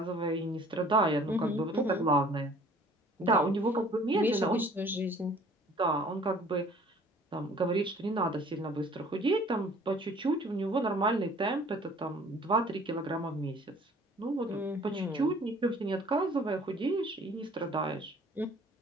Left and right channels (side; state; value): both; normal; correlation 0.53